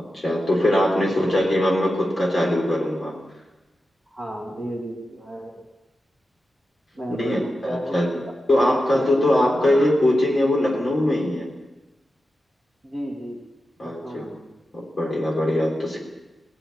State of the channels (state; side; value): normal; both; correlation 0.91